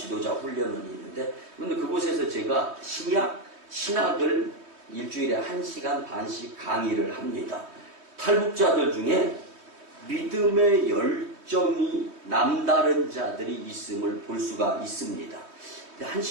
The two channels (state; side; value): late; left; 3.2 ms